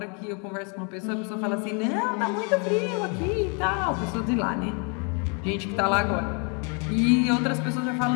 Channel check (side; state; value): right; quieter; 36.5 dB